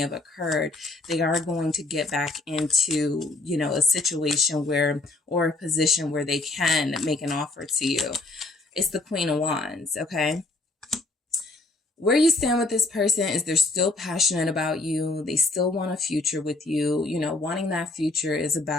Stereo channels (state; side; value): quieter; right; 3.1 dB